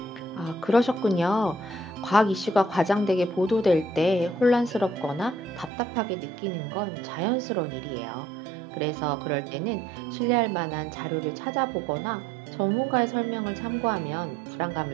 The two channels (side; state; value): left; drops out; at 5.7 s